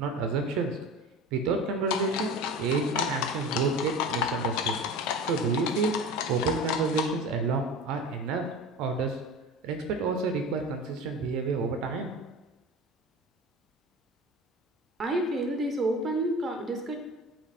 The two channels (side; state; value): both; normal; correlation 0.33